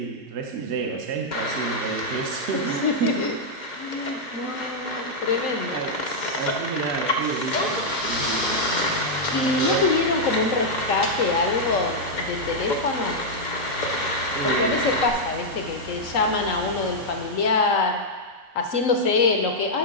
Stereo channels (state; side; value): normal; both; correlation -0.04